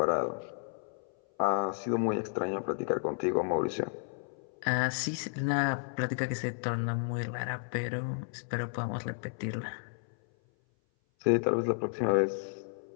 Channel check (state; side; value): silent; right; 56 dB below the other